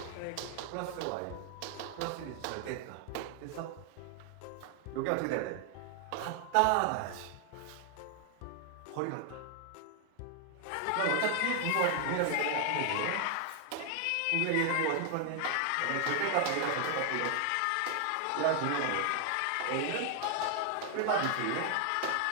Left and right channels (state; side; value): different; both; correlation 0.00